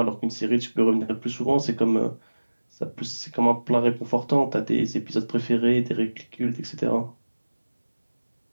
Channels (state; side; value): inverted; both; correlation -1.00